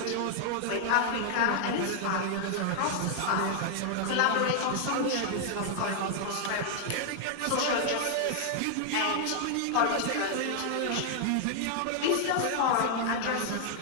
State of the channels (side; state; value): both; different; correlation 0.00